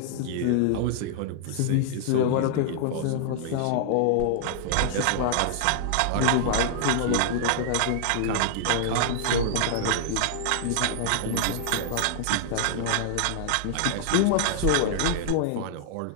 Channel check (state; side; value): different; both; correlation -0.01